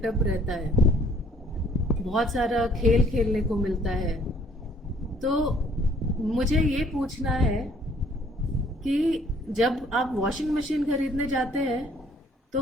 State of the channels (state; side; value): normal; both; correlation 0.59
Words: रहता है, बहुत सारा खेल खेलने को मिलता है। तो मुझे ये पूछना है कि जब आप वॉशिंग मशीन खरीदने जाते हैं तो